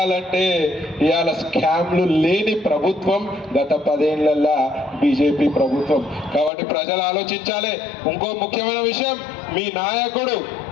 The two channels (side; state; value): right; drops out; at 6.5 s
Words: ఇవాళ స్కామ్లు లేని ప్రభుత్వం గత 10 ఏళ్లలో బీజేపీ ప్రభుత్వం. కాబట్టి ప్రజలు ఆలోచించాలి. ఇంకో ముఖ్యమైన విషయం, మీ నాయకుడు